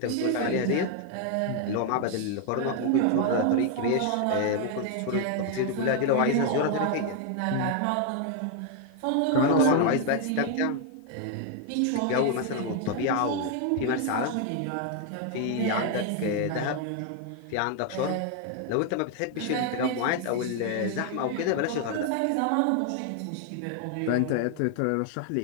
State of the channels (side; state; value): both; different; correlation 0.00